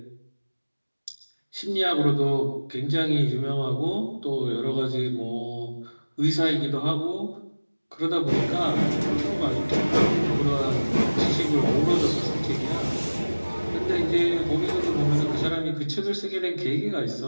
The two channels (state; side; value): inverted; both; correlation -1.00